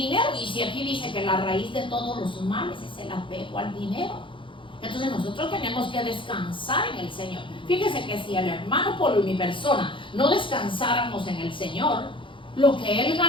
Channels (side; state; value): right; late; 0.25 ms